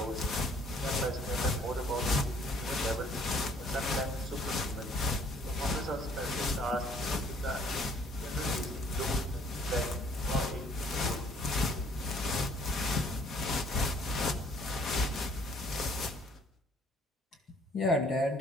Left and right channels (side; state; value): both; normal; correlation 0.60